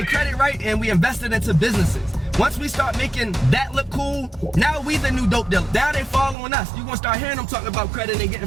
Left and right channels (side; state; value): left; drops out; at 6.4 s